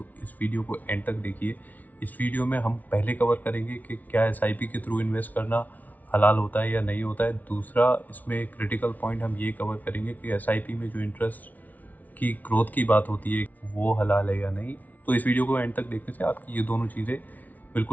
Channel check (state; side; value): late; right; 0.075 ms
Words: इस वीडियो को एंड तक देखिए। इस वीडियो में हम पहले कवर करेंगे कि क्या एसआईपी के थ्रू इन्वेस्ट करना हलाल होता है या नहीं होता है। दूसरा, इसमें क्रिटिकल पॉइंट हम ये कवर करेंगे कि एसआईपी में जो इंटरेस्ट की ग्रोथ की बात होती है वो हलाल है या नहीं। तो इस वीडियो को एंड तक देखने से आपकी ये दोनों चीज़ें